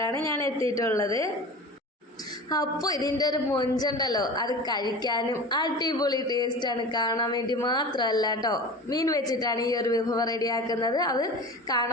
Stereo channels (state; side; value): normal; both; correlation 0.34